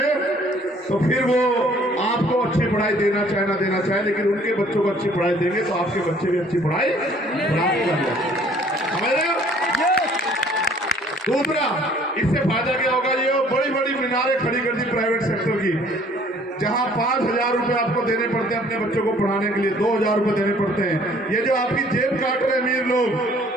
तो फिर वो आपको अच्छी पढ़ाई देना चाहे ना देना चाहे, लेकिन उनके बच्चों को अच्छी पढ़ाई देंगे तो आपके बच्चे भी अच्छी पढ़ाई प्राप्त करेंगे। दूसरा, इससे फायदा क्या होगा? ये बड़ी बड़ी मीनारें खड़ी कर दी प्राइवेट सेक्टर की, जहां 5,000 रुपए आपको देने पड़ते हैं अपने बच्चों को पढ़ाने के लिए, 2,000 रुपए देने पड़ते हैं। ये जो आपकी जेब काट रहे अमीर लोग,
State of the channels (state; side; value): normal; both; correlation 0.57